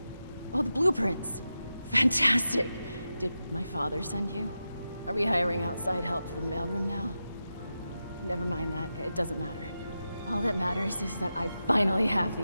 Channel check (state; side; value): inverted; both; correlation -0.91